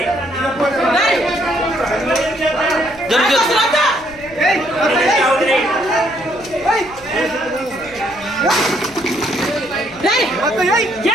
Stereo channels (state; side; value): noise; left; hum, 21 dB below the sound